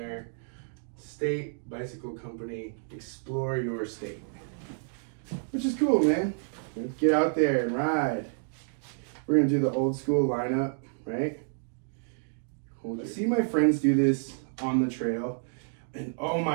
State Bicycle Company, explore your state. Which is cool, man. Get out there and ride. We're gonna do the old school lineup, right? I see my friends do this on the trail and oh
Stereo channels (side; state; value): left; silent; digital silence